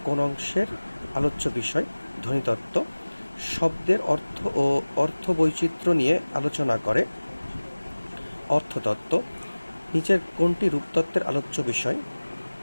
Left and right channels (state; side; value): inverted; both; correlation -1.00